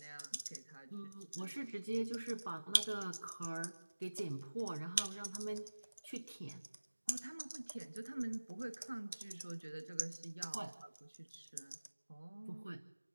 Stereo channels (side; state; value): both; inverted; correlation -1.00